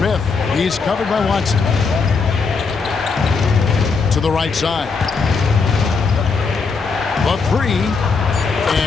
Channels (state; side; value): quieter; right; 4.8 dB